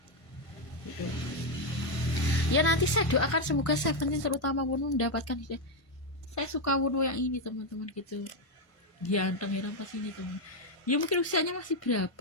Gitu. Ya nanti saya doakan semoga Seventeen terutama Wono mendapatkan hidayah. Saya suka Wono yang ini teman-teman gitu. Ganteng pas ini teman. Ya mungkin usianya masih berapa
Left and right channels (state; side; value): late; right; 1.5 ms